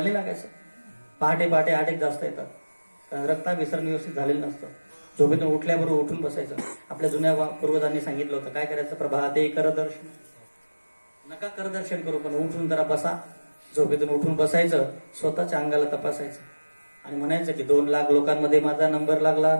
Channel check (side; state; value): both; inverted; correlation -1.00